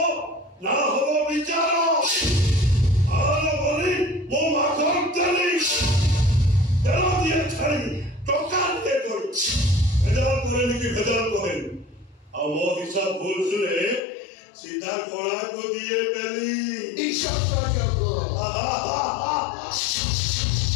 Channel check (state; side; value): drops out; right; at 14.0 s